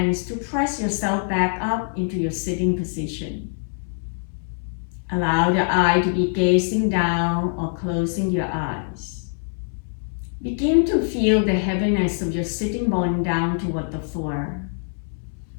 to press yourself back up into your sitting position. Allow the eye to be gazing down or closing your eyes. Begin to feel the heaviness of your sitting bone down toward the floor.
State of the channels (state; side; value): silent; right; 63 dB below the other